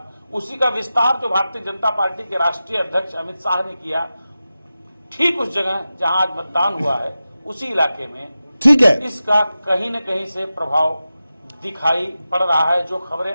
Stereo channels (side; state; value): both; inverted; correlation -0.94